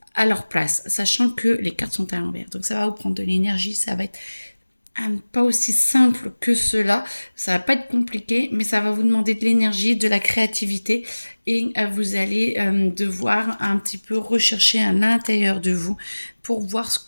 à leur place, sachant que les cartes sont à l'envers. Donc ça va vous prendre de l'énergie, ça va être pas aussi simple que cela, ça va pas être compliqué, mais ça va vous demander de l'énergie, de la créativité et vous allez devoir un petit peu rechercher à l'intérieur de vous pour voir ce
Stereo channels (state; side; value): inverted; both; correlation -1.00